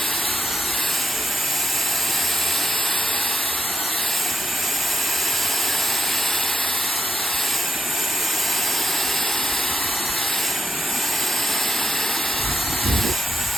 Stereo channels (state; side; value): normal; both; correlation 0.84